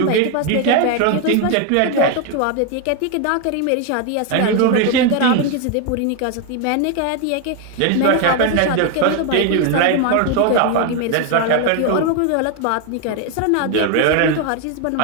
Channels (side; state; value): both; different; correlation 0.01